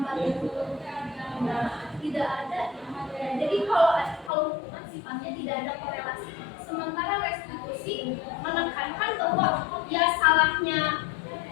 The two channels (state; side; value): drops out; right; at 4.3 s